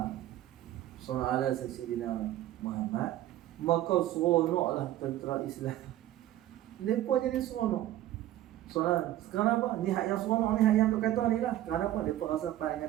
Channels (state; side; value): quieter; left; 13.7 dB